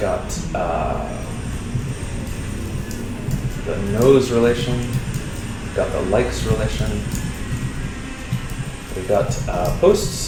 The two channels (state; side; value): identical; both; correlation 1.00